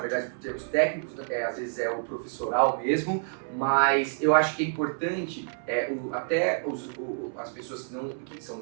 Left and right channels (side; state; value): left; silent; 59 dB below the other